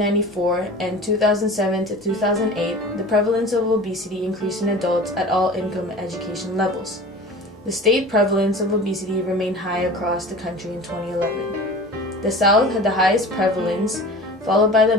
and 2007 to 2008, the prevalence of obesity increased in adults at all income and education levels. The state prevalence of obesity remained high across the country in 2011. The South had the highest prevalence, followed by the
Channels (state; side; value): normal; both; correlation 0.38